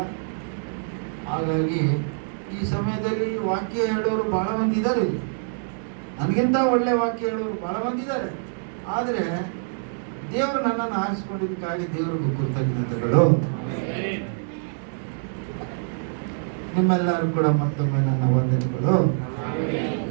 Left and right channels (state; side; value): silent; left; digital silence